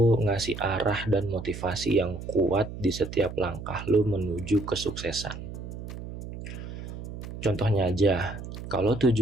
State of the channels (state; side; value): noise; right; hum, 10 dB below the sound